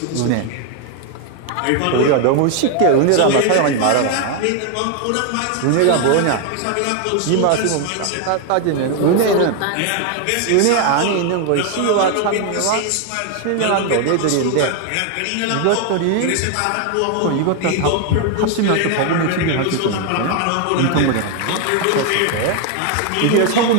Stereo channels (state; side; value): different; both; correlation 0.01